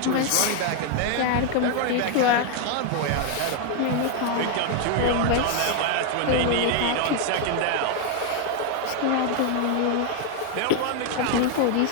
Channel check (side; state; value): both; different; correlation 0.00